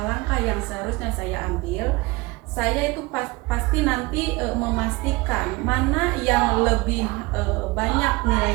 yang seharusnya saya ambil, saya itu pasti nanti memastikan mana yang lebih banyak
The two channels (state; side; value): quieter; left; 23.2 dB